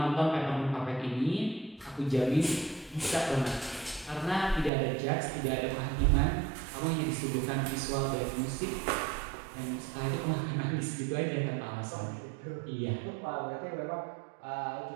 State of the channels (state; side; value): drops out; left; at 4.7 s